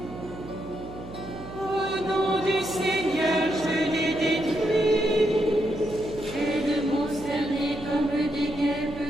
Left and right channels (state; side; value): noise; right; hum, 14 dB below the sound